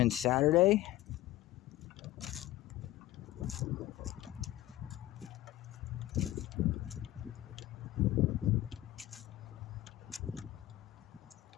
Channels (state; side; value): quieter; right; 15.4 dB